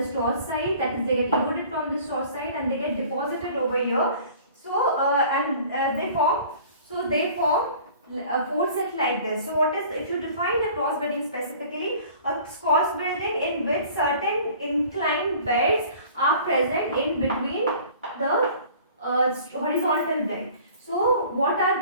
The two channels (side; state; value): both; inverted; correlation -0.48